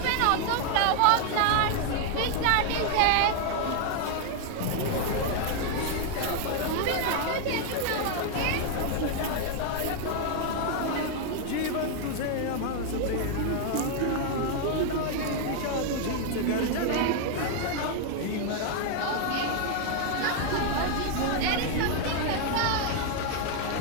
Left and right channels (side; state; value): both; different; correlation 0.00